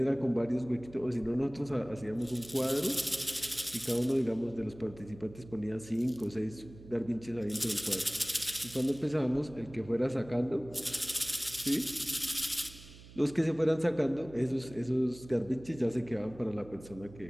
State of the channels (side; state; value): right; noise; hum, 18 dB below the sound